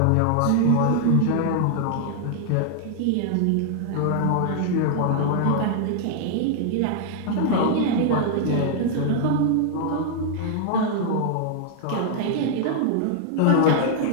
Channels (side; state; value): both; different; correlation -0.01